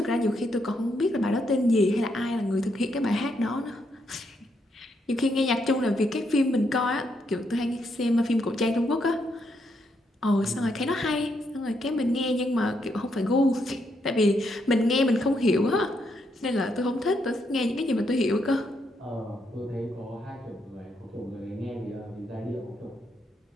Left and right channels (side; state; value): both; normal; correlation 0.77